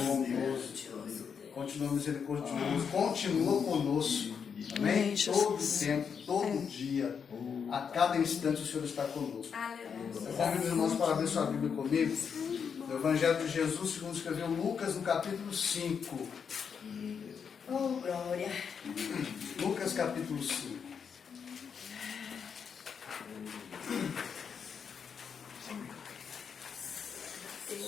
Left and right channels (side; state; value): right; quieter; 6.7 dB